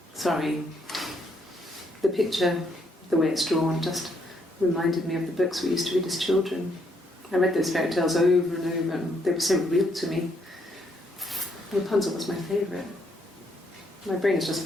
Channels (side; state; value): both; normal; correlation 0.73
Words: Sorry. The picture, the way it's drawn, just reminded me of the books we used to read as children. I read those fairy tales over and over, and they were so real to me. Rapunzel was my favourite. My brain is just